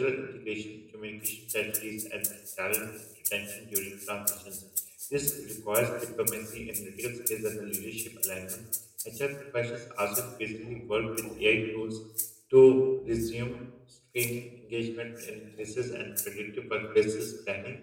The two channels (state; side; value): identical; both; correlation 1.00